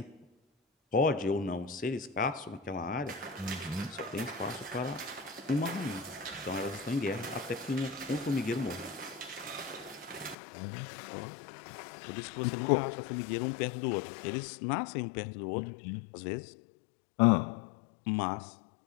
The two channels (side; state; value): right; drops out; at 10.4 s